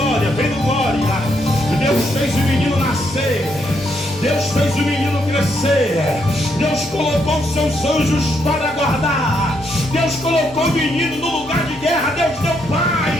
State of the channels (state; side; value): normal; both; correlation 0.76